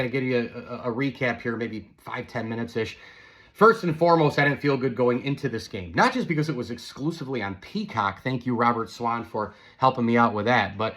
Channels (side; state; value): both; identical; correlation 1.00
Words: I'll give you a recap here, maybe 5-10 minutes-ish. First and foremost, I didn't feel good going into this game. Not just because it was exclusively on Peacock. Thank you, Robert Swan, for helping me out with that. But